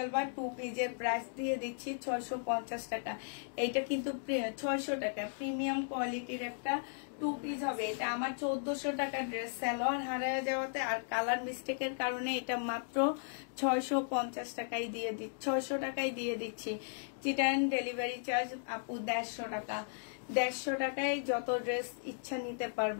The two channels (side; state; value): right; silent; digital silence